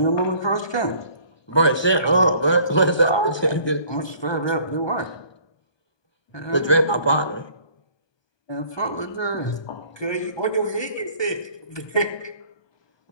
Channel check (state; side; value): late; right; 1.2 ms